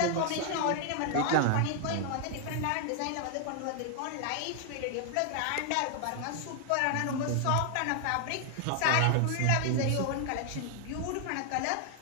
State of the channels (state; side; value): different; both; correlation 0.00